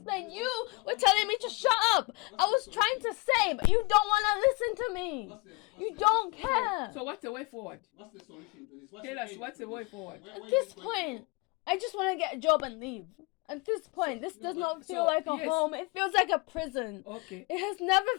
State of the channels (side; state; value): right; quieter; 26.6 dB